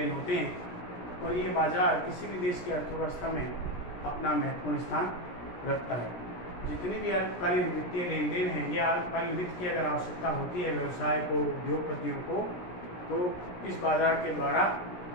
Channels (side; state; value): right; late; 17 ms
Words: होते हैं और ये बाजार किसी भी देश की अर्थव्यवस्था में अपना महत्वपूर्ण स्थान रखता है। जितनी भी अल्पकालीन वित्तीय लेन देन हैं, ये अल्पकालीन वित्त की अगर आवश्यकता होती है व्यवसाय को, उद्योगपतियों को, तो इस बाजार के द्वारा